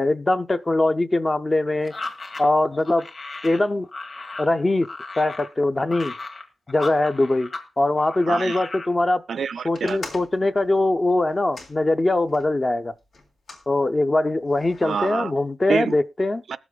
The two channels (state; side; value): normal; both; correlation 0.96